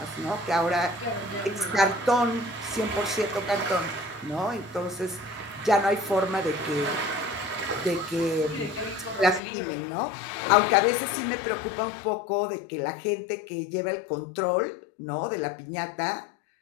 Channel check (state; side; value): drops out; right; at 9.4 s